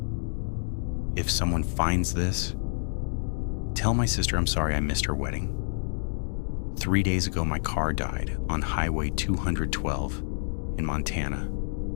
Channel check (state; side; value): silent; right; digital silence